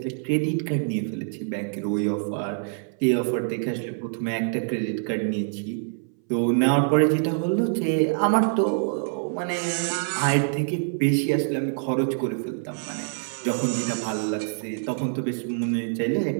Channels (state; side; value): silent; left; 60 dB below the other